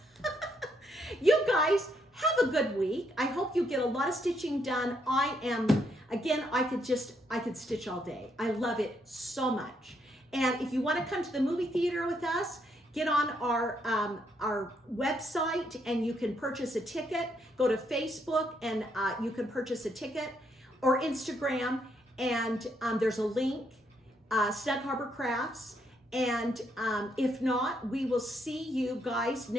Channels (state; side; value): normal; both; correlation 0.75